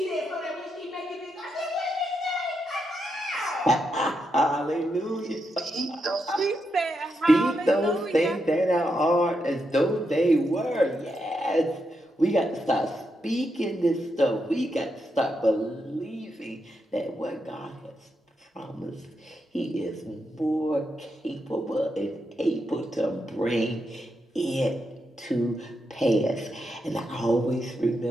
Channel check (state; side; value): normal; both; correlation 0.83